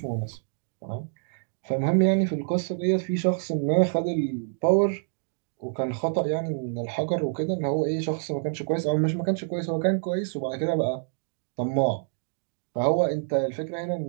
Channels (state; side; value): silent; left; digital silence